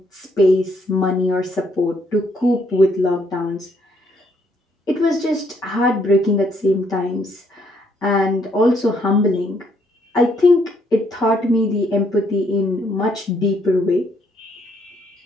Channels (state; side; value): normal; both; correlation 0.70